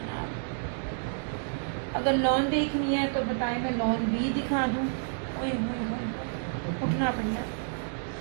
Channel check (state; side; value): silent; left; digital silence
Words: अगर लॉन देखनी है तो बताएं, मैं लॉन भी दिखा दूं। ओए होए होए, उठना पड़ना।